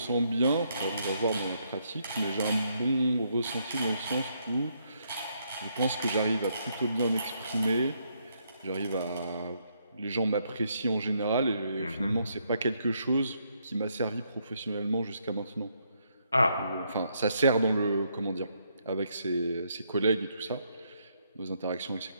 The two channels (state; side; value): inverted; both; correlation -0.75